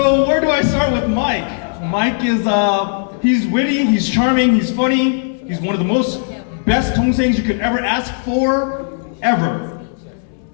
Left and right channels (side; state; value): right; silent; 68 dB below the other